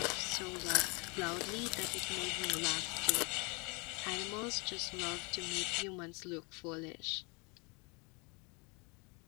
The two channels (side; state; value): right; quieter; 30.3 dB